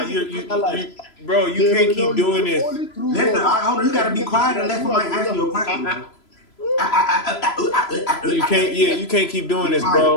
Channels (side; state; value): right; late; 3.0 ms